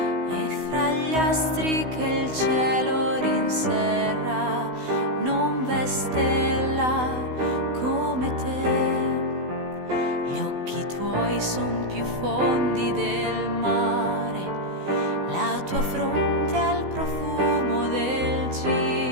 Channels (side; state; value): left; late; 16 ms